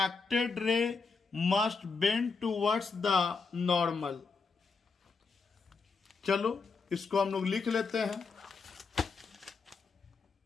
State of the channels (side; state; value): right; quieter; 4.8 dB